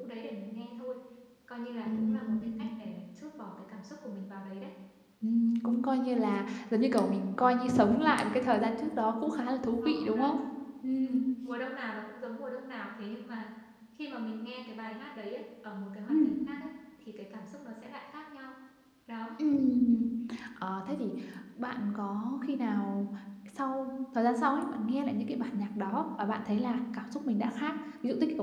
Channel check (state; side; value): identical; both; correlation 1.00